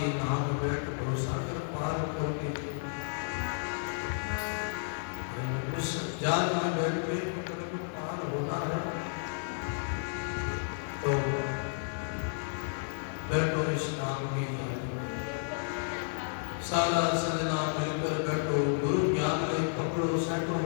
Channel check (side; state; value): right; silent; 56 dB below the other